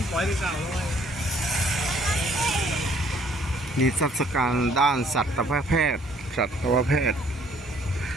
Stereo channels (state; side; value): normal; both; correlation 0.61